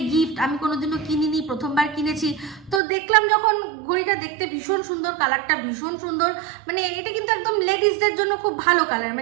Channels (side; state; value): left; drops out; at 2.8 s